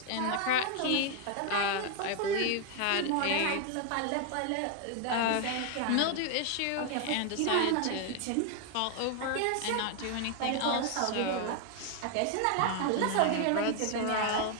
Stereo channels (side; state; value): both; different; correlation 0.00